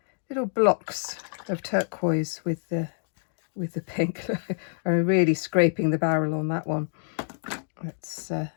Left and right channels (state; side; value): silent; right; digital silence